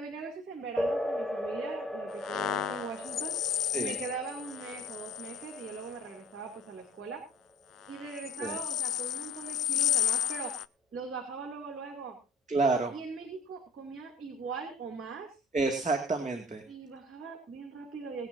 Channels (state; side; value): normal; both; correlation 0.47